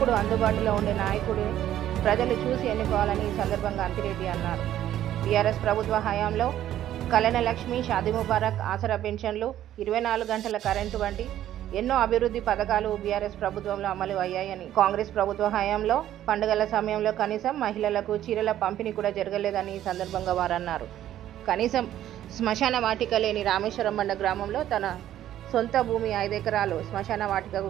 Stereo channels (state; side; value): quieter; left; 12.1 dB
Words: అందుబాటులో ఉండే నాయకుడిని ప్రజలు చూసి ఎన్నుకోవాలని ఈ సందర్భంగా అంతిరెడ్డి అన్నారు. బీఆర్ఎస్ ప్రభుత్వ హయాంలో కళ్యాణ లక్ష్మి, షాదీ ముబారక్, ఆసరా పెన్షన్లు, 24 గంటల కరెంటు వంటి ఎన్నో అభివృద్ధి పథకాలు బీఆర్ఎస్ ప్రభుత్వంలో అమలు అయ్యాయని, కాంగ్రెస్ ప్రభుత్వ హయాంలో పండుగల సమయంలో కనీసం మహిళలకు చీరల పంపిణీ కూడా జరగలేదని ఈ సందర్భంగా వారు అన్నారు. కనీసం శ్మశాన వాటిక లేని రామేశ్వరం బండ గ్రామంలో తన సొంత భూమి 5 ఎకరాలు శ్మశాన